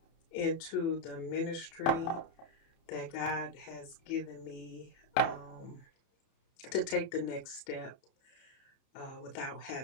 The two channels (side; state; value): right; late; 30 ms